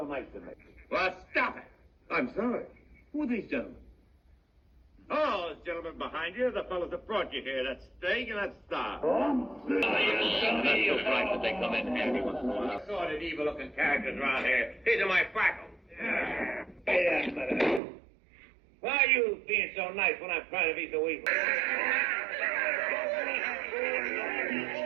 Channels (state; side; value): drops out; left; at 17.8 s